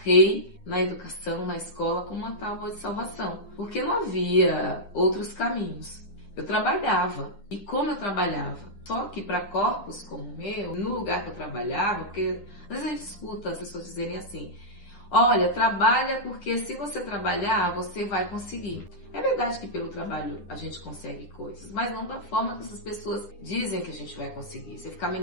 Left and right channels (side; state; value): right; late; 10 ms